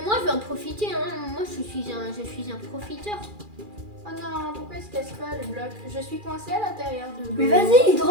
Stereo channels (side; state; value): left; late; 2.4 ms